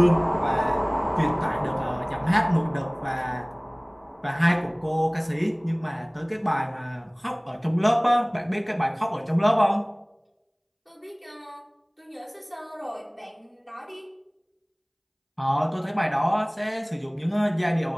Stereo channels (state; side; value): identical; both; correlation 1.00